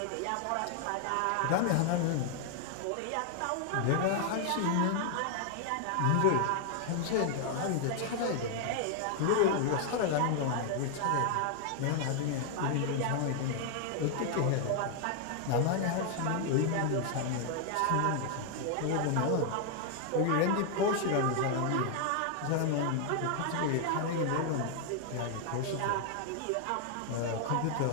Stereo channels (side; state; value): both; different; correlation 0.00